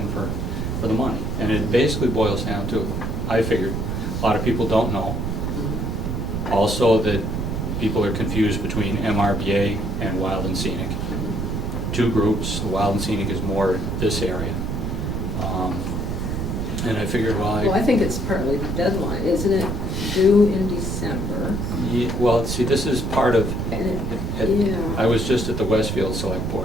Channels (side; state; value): right; noise; rumble, 2 dB below the sound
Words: for the money? And it basically boils down to, I figured, a lot of people don't know. Mhm. Also that people are confused between MRBA and Wild and Scenic. Mhm. Two groups, the Wild and Scenic is more this area. And I figured, Well, I think it's partly the deadline, isn't it due in December? well, see, this is part of, And it- I was just at the Westfield